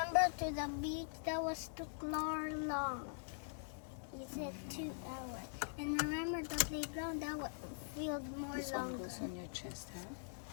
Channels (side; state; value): right; silent; digital silence